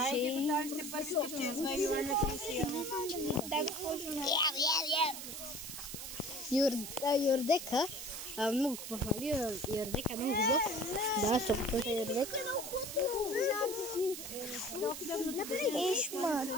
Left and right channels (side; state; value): right; noise; hiss, 8 dB below the sound